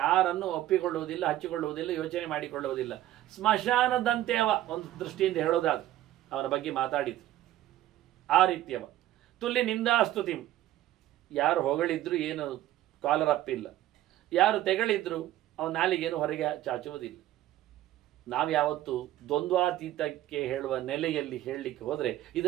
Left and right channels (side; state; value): left; quieter; 14.1 dB